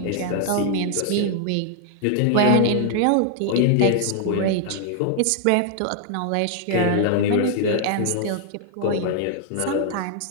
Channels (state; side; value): different; both; correlation -0.01